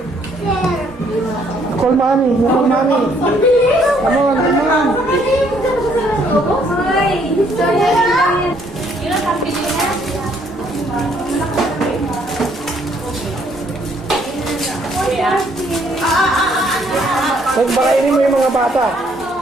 Call mommy. Call mommy. Come on, come on. Hoy! Yun ang pambili na. Pagpakainin mo yung mga bata.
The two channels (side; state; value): both; normal; correlation 0.66